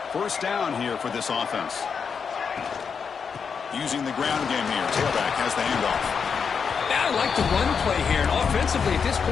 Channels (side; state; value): right; quieter; 6.2 dB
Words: First down here for this offense. Using the ground game here. Tailback has the handoff. I like the run play here. And offensively, at this